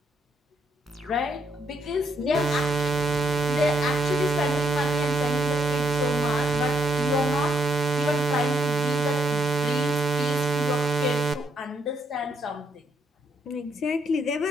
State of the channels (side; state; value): both; normal; correlation 0.74